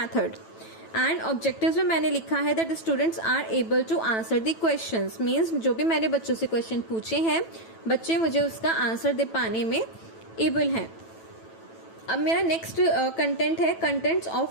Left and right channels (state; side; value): late; right; 9.1 ms